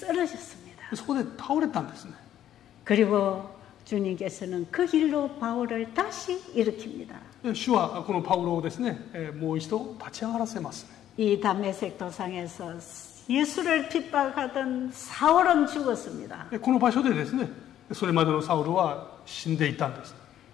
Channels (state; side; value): quieter; right; 11.4 dB